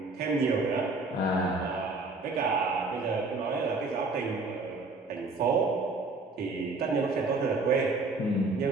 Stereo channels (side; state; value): left; quieter; 3.5 dB